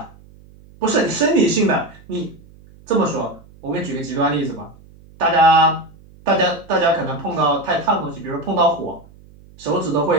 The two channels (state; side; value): noise; right; hum, 24 dB below the sound